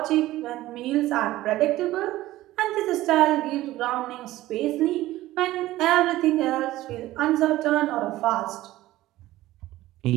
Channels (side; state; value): left; quieter; 16.1 dB